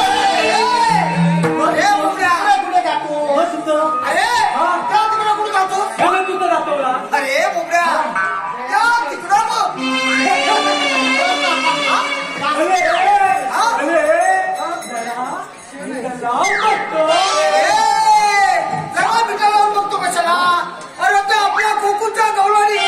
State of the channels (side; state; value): both; identical; correlation 1.00